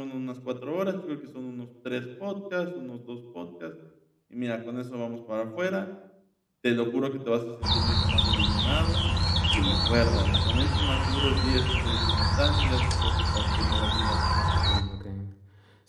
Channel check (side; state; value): both; identical; correlation 1.00